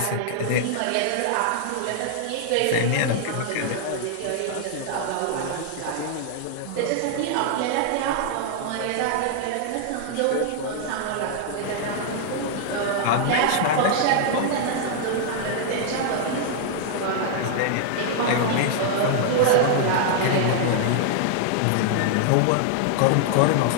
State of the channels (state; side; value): different; both; correlation -0.01